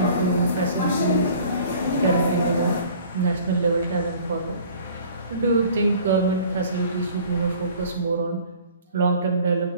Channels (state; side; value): inverted; both; correlation -0.49